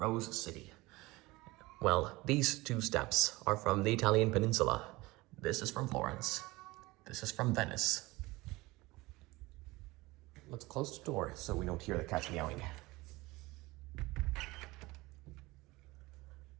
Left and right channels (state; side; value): quieter; left; 21.2 dB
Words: City. Well, these two steps are from the Italian peninsula. This is from Florence. This is from Venice. Let's close the door so we don't hear the cats meowing.